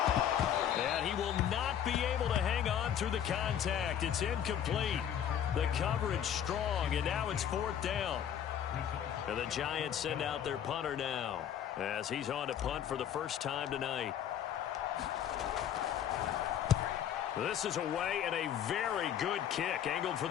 And he will not be able to hang on through the contact. It's incomplete. The coverage strong, and now it's 4th down. And the Giants send out their punter now, as he's on to punt for the first time tonight. This is away, and a very good kick angled for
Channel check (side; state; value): right; quieter; 9.6 dB